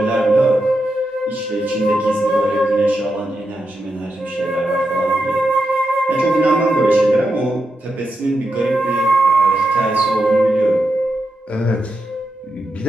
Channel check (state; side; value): normal; both; correlation 0.86